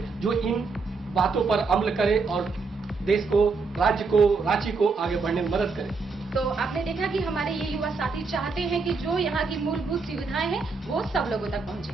जो इन बातों पर अमल करे और देश को, राज्य को, रांची को आगे बढ़ने में मदद करे। तो आपने देखा कि हमारे ये युवा साथी चाहते हैं कि जो यहाँ की मूलभूत सुविधाएं हैं वो सब लोगों तक पहुँचे।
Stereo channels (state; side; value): quieter; left; 4.3 dB